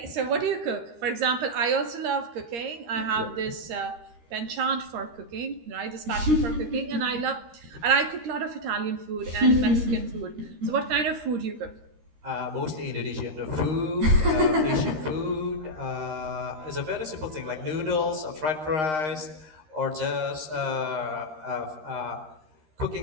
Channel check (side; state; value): left; late; 13 ms